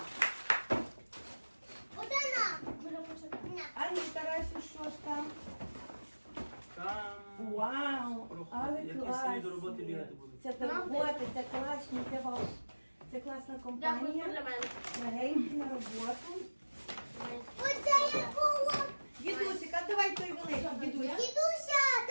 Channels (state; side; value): inverted; both; correlation -1.00